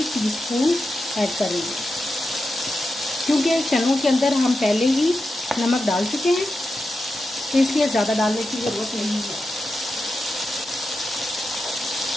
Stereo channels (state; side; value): normal; both; correlation 0.90